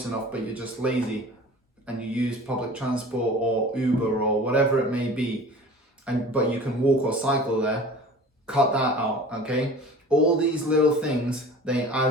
enough but you're just lazy and you use public transport or Uber or whatever it may be, but you can walk or cycle there, cut that out, okay? All these little things, they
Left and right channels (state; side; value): normal; both; correlation 0.41